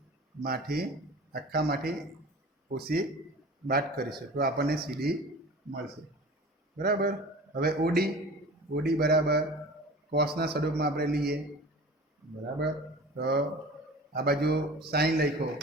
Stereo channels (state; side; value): normal; both; correlation 0.39